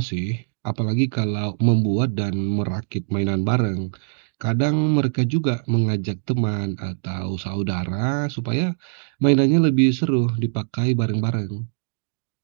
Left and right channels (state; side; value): silent; left; digital silence